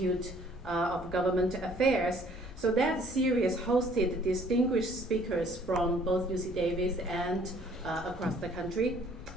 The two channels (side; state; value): left; noise; rumble, 18 dB below the sound